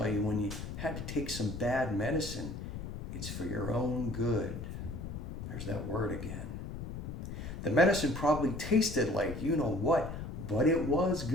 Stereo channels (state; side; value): noise; left; rumble, 7 dB below the sound